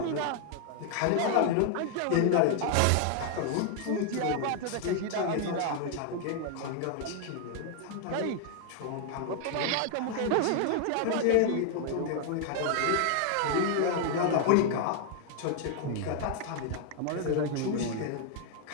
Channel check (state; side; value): different; both; correlation 0.00